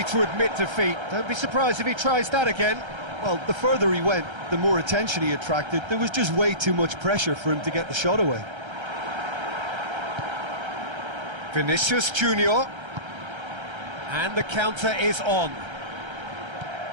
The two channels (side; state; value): left; late; 1.3 ms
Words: to admit defeat. Don't be surprised if he tries that again. Well, the further he went, the more attention he attracted. There was just way too much pressure for him to get the shot away. Vinicius Junior. And the counter is on.